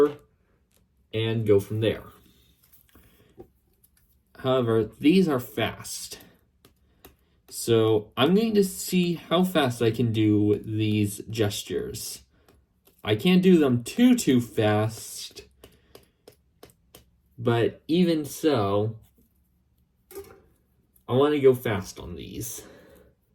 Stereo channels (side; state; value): both; identical; correlation 1.00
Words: and go from there. However, these are fast. So I'm going to see how fast I can do these gestures. I can't do them too fast, but even so, I want to go fast on these.